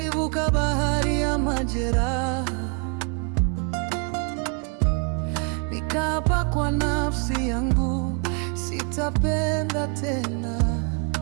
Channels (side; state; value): left; quieter; 37.8 dB